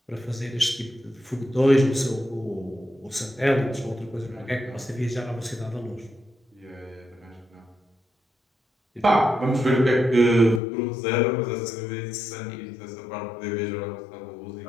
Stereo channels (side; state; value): right; drops out; at 10.6 s